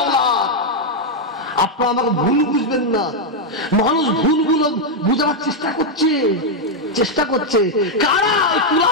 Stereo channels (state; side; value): normal; both; correlation 0.00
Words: আপনারা আমাকে ভুল বুঝবেন না। মানুষ ভুলগুলো বুঝাবার চেষ্টা করছে কারা? ওই